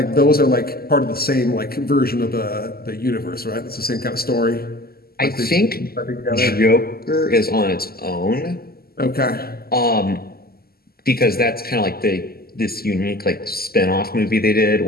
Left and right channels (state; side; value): late; right; 0.45 ms